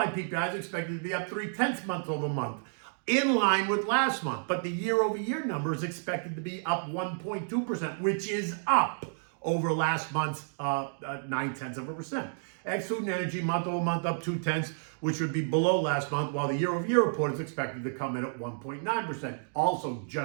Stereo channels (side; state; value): left; silent; digital silence